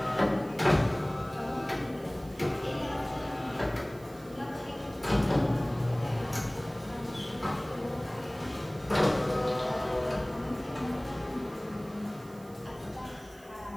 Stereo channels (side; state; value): right; noise; hiss, 25 dB below the sound